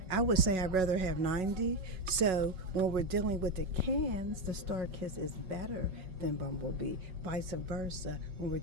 I would say I'd rather have 90. So when we're dealing with the cans, the Star Kiss is better than Bumblebee. Vice versa when we're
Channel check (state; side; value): late; left; 5.4 ms